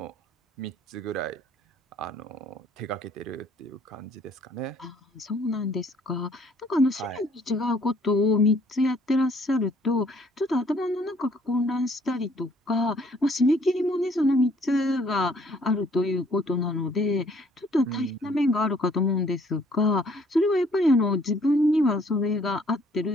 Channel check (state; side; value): normal; both; correlation 0.61